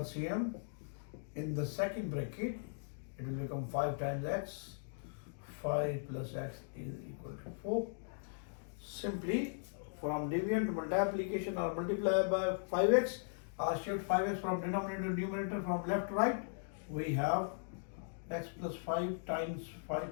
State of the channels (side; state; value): right; silent; digital silence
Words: In the second bracket, it will become 5 times x. 5 plus x is equal to 4. Simply from division to multiplication or multiply by 5x, or shift 5x from denominator to numerator from left to right, we have x plus 5 times